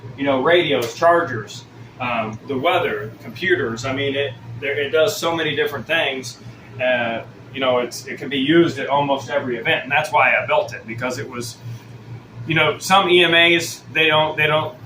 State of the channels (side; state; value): both; identical; correlation 1.00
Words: radios, chargers, the weather, computers. I mean, it does so many different things. It can be used at almost every event, and that's why I built it, because it was, some EMAs they